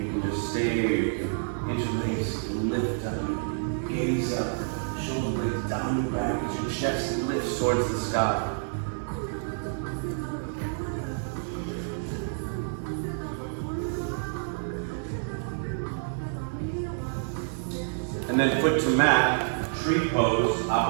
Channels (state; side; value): silent; left; 59 dB below the other